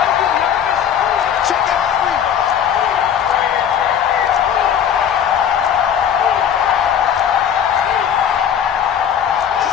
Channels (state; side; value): quieter; right; 8.7 dB